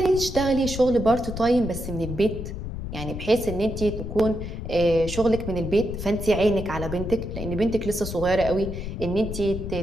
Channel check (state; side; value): noise; left; rumble, 7 dB below the sound